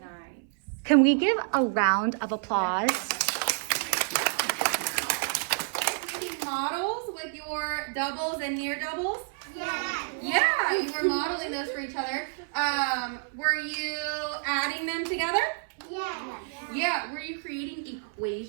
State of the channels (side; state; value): left; silent; 58 dB below the other